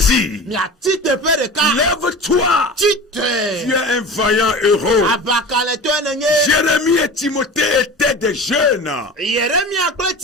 Lève-toi. Tu es un vaillant héros. Jérémie et Timothée étaient des jeunes. Ils n'étaient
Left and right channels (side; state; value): both; normal; correlation 0.34